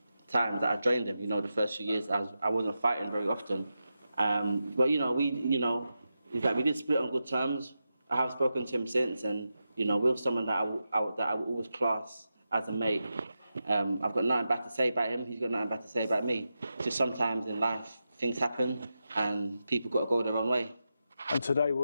time that I joined him. The first few years I wasn't fighting very often. But we did split on good terms. I have spoken to him since, and Will's someone that I will always class as a mate. I've got nothing bad to say about him. He's got nothing bad to say about me. Just sometimes in life things happen, and people got to go their own way. And today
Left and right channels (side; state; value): both; inverted; correlation -0.90